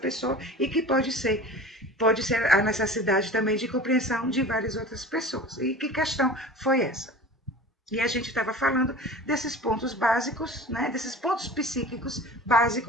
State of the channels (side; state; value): both; normal; correlation 0.38